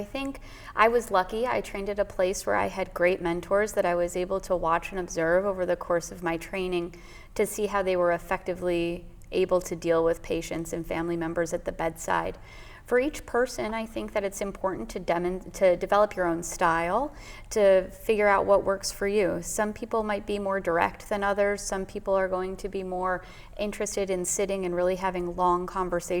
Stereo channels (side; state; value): both; identical; correlation 1.00